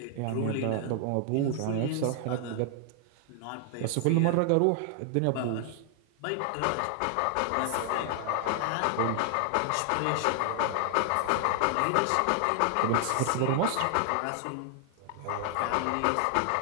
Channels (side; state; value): both; different; correlation 0.00